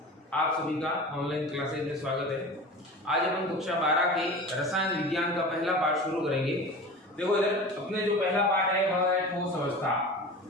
आप सभी का ऑनलाइन क्लासेज में स्वागत है। आज अपन कक्षा 12 के रसायन विज्ञान का पहला पाठ शुरू करेंगे। देखो इधर अपने जो पहला पाठ है वह है ठोस अवस्था,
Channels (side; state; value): both; normal; correlation 0.34